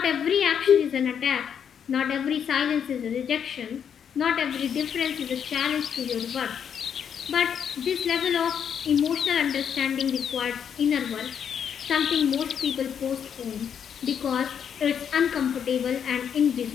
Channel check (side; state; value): right; quieter; 8.0 dB